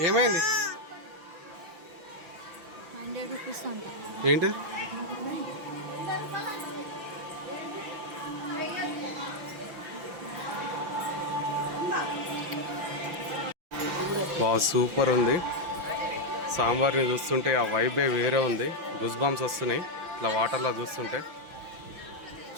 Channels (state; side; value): late; left; 5.9 ms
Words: ఏమైంది? ఏంటి? సూపర్ ఉంది. సాంబార్ని చూస్తుంటే ఆ వైబే వేరే ఉంది, గుజ్ బాంబ్స్ వస్తున్నాయి ఇట్లా వాటర్లో చూస్తుంటే.